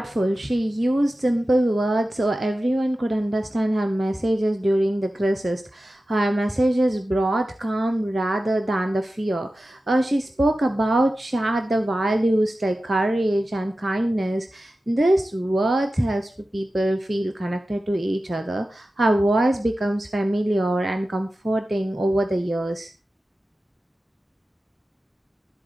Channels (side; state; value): both; normal; correlation 0.94